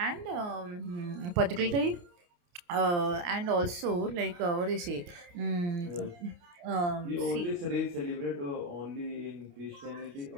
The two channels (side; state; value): left; late; 29 ms